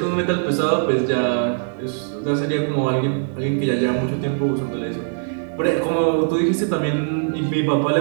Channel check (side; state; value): left; silent; digital silence